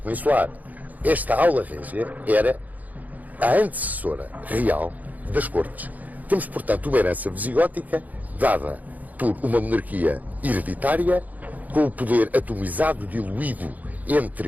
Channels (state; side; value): late; left; 0.079 ms